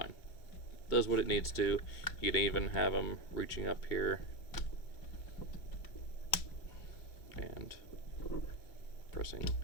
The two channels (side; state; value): right; late; 2.2 ms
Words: Does what it needs to. You can even have them reaching up here and pressing